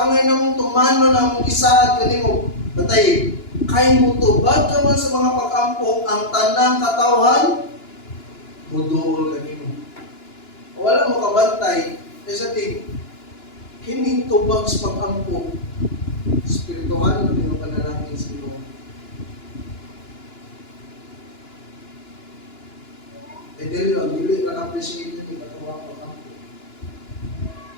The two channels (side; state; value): right; late; 2.9 ms